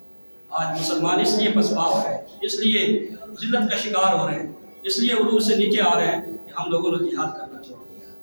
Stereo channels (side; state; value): both; inverted; correlation -1.00